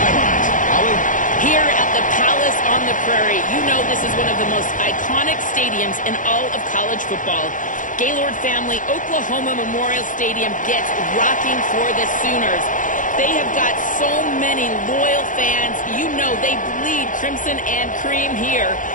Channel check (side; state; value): right; late; 0.38 ms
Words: Holly? Here at the Palace on the Prairie, you know this is one of the most iconic stadiums in all of college football. Gaylord family, Oklahoma Memorial Stadium gets rocking for the Sooners. They have got so many loyal fans. You know they bleed crimson and cream here.